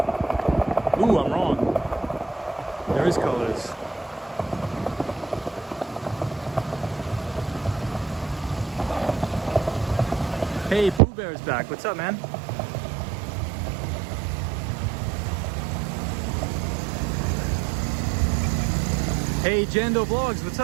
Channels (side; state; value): left; drops out; at 11.0 s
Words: Ooh, I'm wrong. There is colors. Hey, Pooh Bear's back. What's up, man? Hey, Jando Vlogs. What's